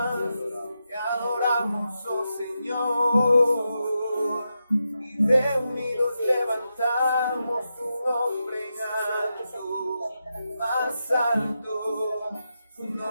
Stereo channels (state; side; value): inverted; both; correlation -0.87